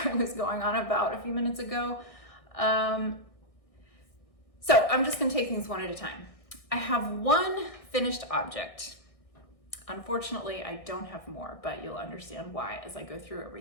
I was going on about a few minutes ago. So I'm just gonna take things one at a time. I have one finished object. Unfortunately, I don't have more, but you'll understand why as I go through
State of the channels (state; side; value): late; right; 1.6 ms